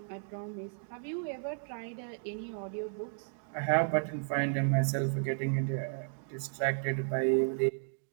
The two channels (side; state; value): left; silent; digital silence